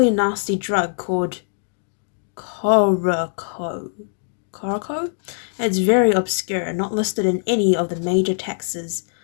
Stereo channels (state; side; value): silent; right; 64 dB below the other